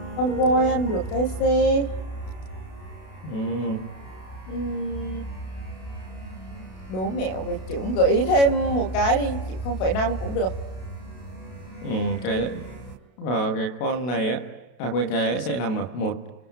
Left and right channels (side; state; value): right; late; 32 ms